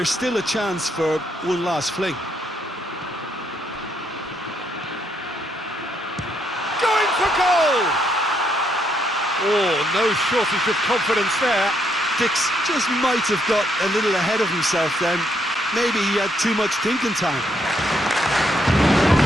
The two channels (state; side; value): normal; both; correlation 0.74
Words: still a chance for one last fling. Going for goal! Oh, no shortage of confidence there. Dix just might have got a little ahead of himself then. Maybe he had too much thinking time.